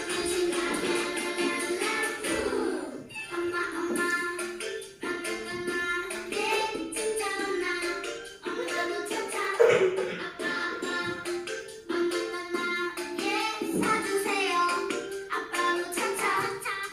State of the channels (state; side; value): identical; both; correlation 1.00